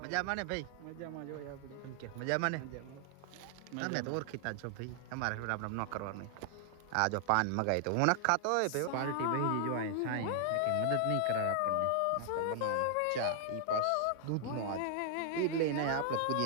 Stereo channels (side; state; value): both; different; correlation 0.00